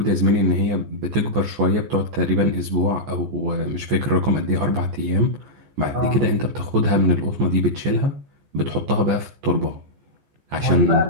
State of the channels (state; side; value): late; left; 14 ms